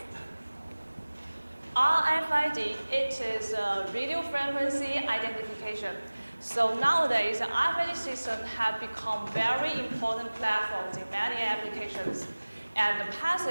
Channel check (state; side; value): inverted; both; correlation -1.00